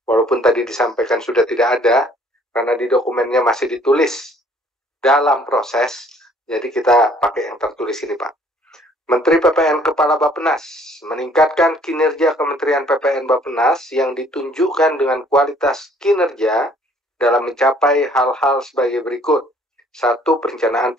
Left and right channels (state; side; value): normal; both; correlation 0.59